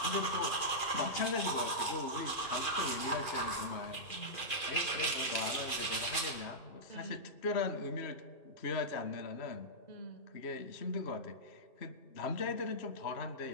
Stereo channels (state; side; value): late; right; 2.4 ms